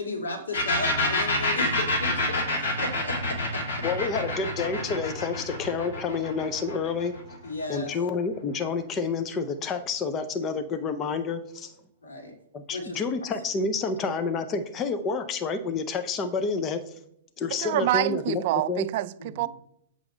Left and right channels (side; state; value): both; normal; correlation -0.07